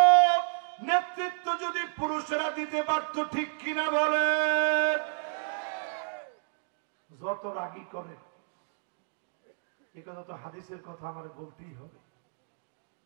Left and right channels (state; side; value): silent; left; digital silence